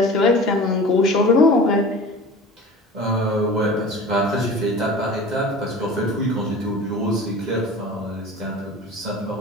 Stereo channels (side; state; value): both; normal; correlation 0.38